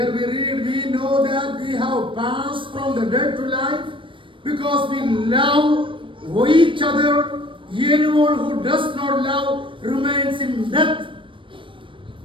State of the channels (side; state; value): left; late; 0.25 ms